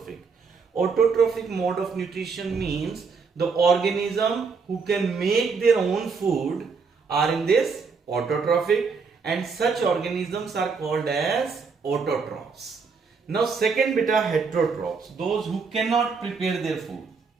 Autotrophic mode of nutrition means the organism who can make their own food are in this autotrophic, and such organisms are called as autotrophs. Now second beta, heterotrophs, those who cannot prepare their food,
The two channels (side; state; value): left; quieter; 5.1 dB